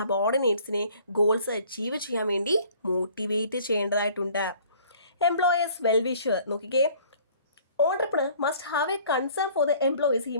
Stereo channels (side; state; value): both; inverted; correlation -0.54